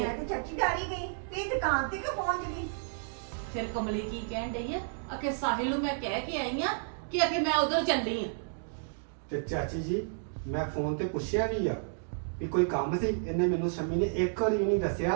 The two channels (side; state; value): left; silent; digital silence